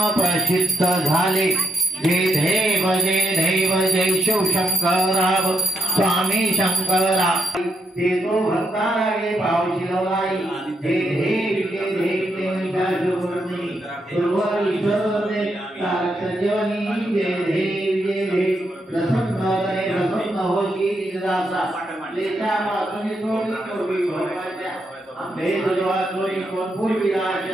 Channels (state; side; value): normal; both; correlation 0.81